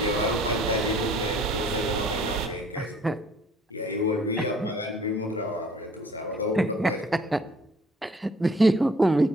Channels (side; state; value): both; normal; correlation 0.56